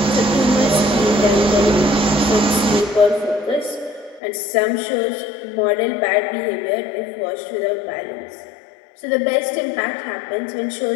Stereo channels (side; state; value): right; drops out; at 4.2 s